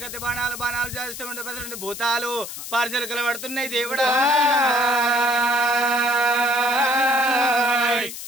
బాణాలు బాణాలు చేస్తుంటే 12 భూతాలు పార్సలుకలు పడుతున్నాయి దేవుడా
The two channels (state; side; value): noise; left; hiss, 9 dB below the sound